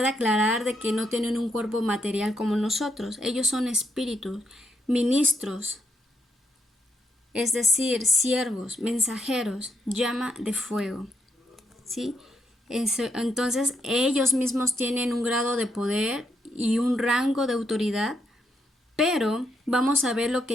aclarar de que no tienen un cuerpo material como nosotros. Ellos son espíritus, ministros, es decir, siervos, mensajeros, llama de fuego, ¿sí? Entonces ellos mismos tienen un grado de poder y un rango de autoridad, pero vamos a ver lo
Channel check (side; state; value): both; normal; correlation 0.78